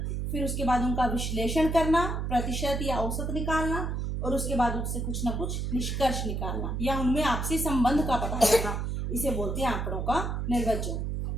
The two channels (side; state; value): right; noise; hum, 2 dB below the sound